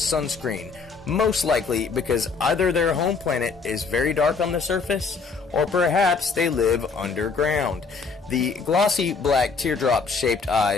most likely because either their home planet is very dark on the surface, or perhaps they live underground. The glossy black teardrop-shaped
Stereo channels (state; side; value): quieter; right; 4.9 dB